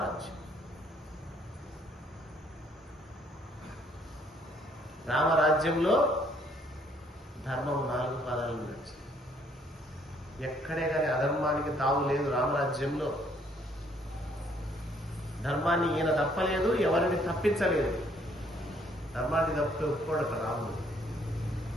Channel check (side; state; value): both; normal; correlation 0.65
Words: రామరాజ్యంలో ధర్మం 4 పాదాలు నడిచింది. ఎక్కడే కానీ అధర్మానికి తావు లేదు రామరాజ్యంలో. ధర్మాన్ని ఈయన తప్పలేదు, ఎవరిని తప్పించలేదు. ధర్మాన్ని తప్పితే ఒప్పుకోడు రాముడు.